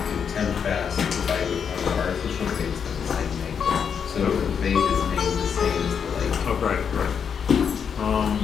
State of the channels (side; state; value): right; quieter; 7.1 dB